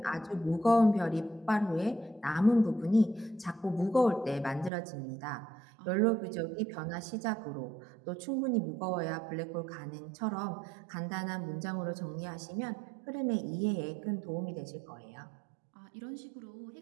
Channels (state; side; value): drops out; left; at 4.7 s